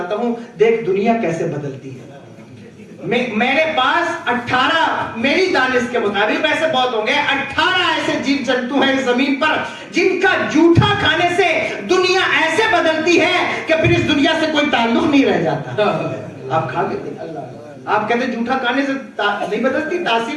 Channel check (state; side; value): identical; both; correlation 1.00